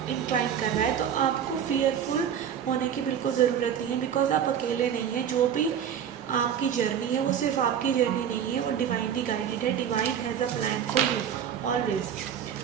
इंक्लाइन कर रहा है। तो आपको फियरफुल होने की बिल्कुल ज़रूरत नहीं है बिकॉज आप अकेले नहीं हैं। जो भी आपकी जर्नी है वो सिर्फ आपकी जर्नी नहीं है, वो डिवाइनली गाइडेड है। Divine has a plan for you always.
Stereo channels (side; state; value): left; quieter; 8.7 dB